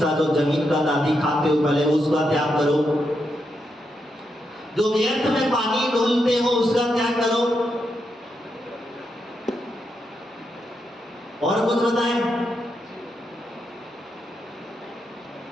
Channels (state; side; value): normal; both; correlation 0.83